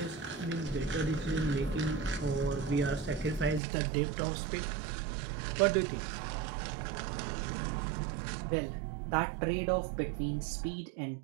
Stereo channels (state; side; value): drops out; left; at 3.6 s